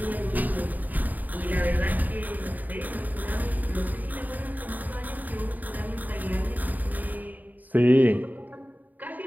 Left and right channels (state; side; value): late; left; 0.083 ms